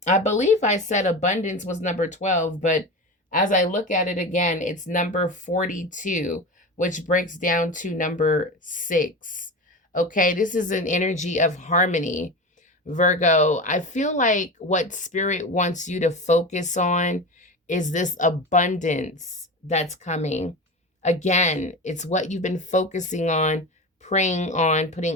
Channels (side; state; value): both; normal; correlation 0.26